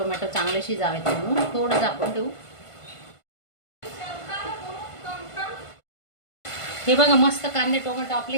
चांगले शिजावेत म्हणून थोडं झाकून ठेवू. हे बघा मस्त कांदे टोमॅटो आपले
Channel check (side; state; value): right; late; 1.5 ms